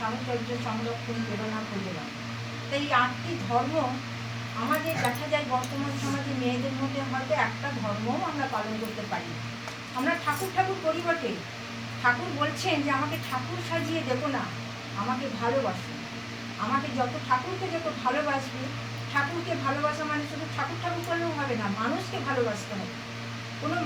সংরক্ষণ, প্রেরণা, প্রযোজনা। তাই এই 8টি ধর্ম আমাদের দেখা যায় বর্তমান সমাজে মেয়েদের মধ্যে হয়তো একটা ধর্মও আমরা পালন করতে পারি। আমরা ঠাকুর ঠাকুর করি বটে, ঠাকুর বলছেন যে আমাকে ঠাকুর সাজিয়ে দেবো না, আমাকে ভালোবাসো। আমাকে ঠাকুরকে যত ভালোবাসবে, ঠাকুরকে ভালোবাসা মানে শুধু ঠাকুর ঠাকুর করলেও হবে না, মানুষকে ভালোবাসতে হবে। কোনো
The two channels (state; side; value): identical; both; correlation 1.00